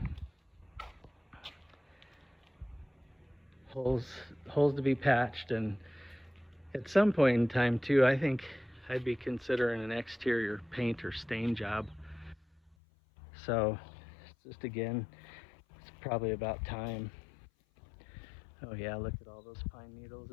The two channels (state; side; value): drops out; right; at 12.8 s